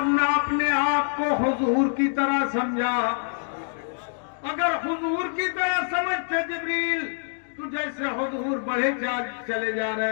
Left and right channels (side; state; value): right; silent; digital silence